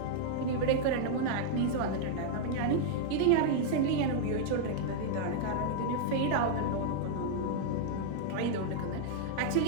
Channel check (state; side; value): different; both; correlation -0.01